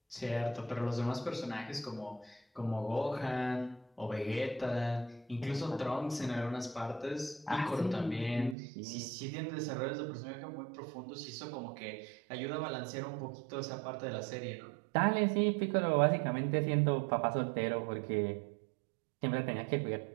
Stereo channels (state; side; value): drops out; left; at 8.6 s